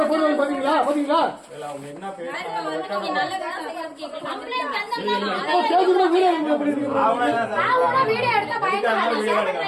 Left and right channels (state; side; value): identical; both; correlation 1.00